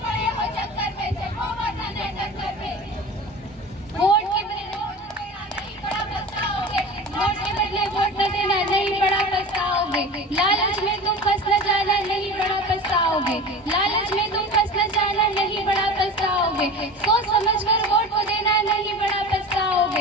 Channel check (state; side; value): normal; both; correlation 0.35